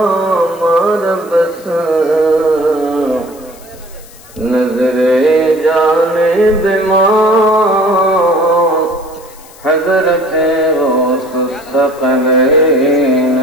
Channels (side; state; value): left; noise; hiss, 23 dB below the sound